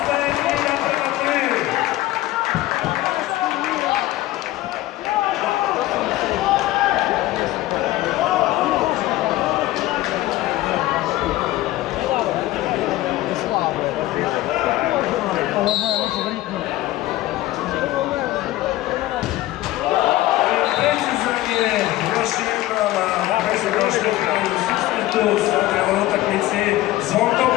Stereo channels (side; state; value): right; quieter; 16.4 dB